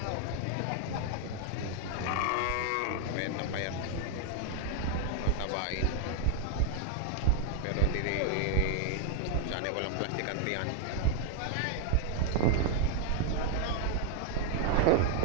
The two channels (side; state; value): both; different; correlation 0.00